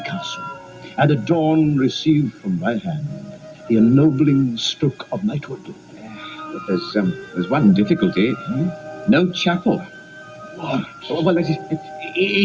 castle, and at dawn receive from my hand the ennobling stroke of knighthood. But there's one difficulty. No chapel. What? Well,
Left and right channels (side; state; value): both; identical; correlation 1.00